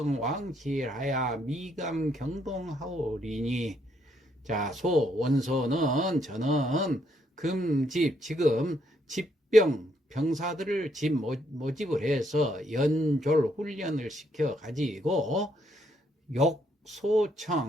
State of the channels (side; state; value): both; normal; correlation 0.73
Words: 왕실하야 미감 경동하오리니. 자, 원소는 저는 지금 병사들을 모집을 해서 연졸 훈련을 시켜 가지고